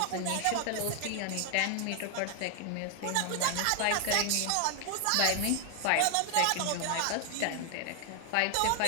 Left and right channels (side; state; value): both; different; correlation 0.00